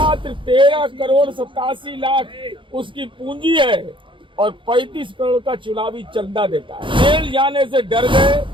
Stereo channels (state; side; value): late; left; 0.24 ms